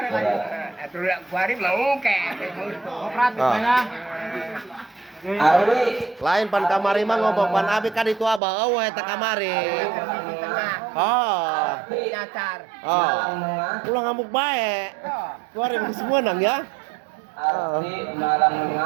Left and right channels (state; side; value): drops out; left; at 8.4 s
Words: lagi. Atuh kuari mau ke. Operatif Ah. ya. Lain pan kamari mah ngobong pan abi kan itu abah eueuh eta kamari. Di tengah. Oh. Nyacar. Oh. Ulah ngamuk bae. Kuari geus meunang ya. Nah,